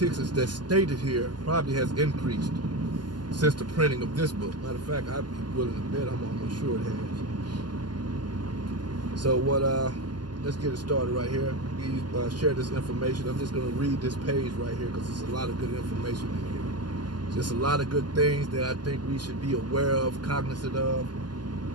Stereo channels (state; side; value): late; left; 0.71 ms